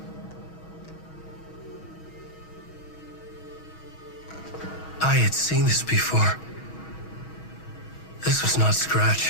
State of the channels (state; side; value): late; right; 6.2 ms